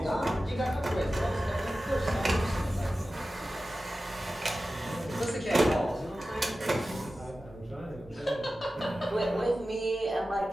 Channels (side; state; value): both; normal; correlation 0.94